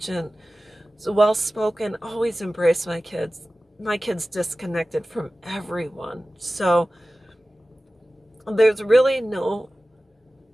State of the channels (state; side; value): normal; both; correlation 0.96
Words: well-spoken, always embrace my kids. My kids disconnected from everyone. So there's really